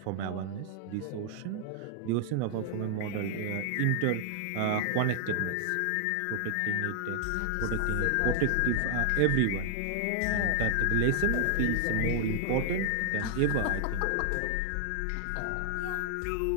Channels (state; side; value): different; both; correlation 0.00